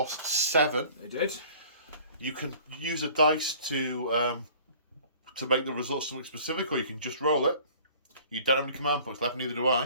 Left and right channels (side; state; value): both; inverted; correlation -0.50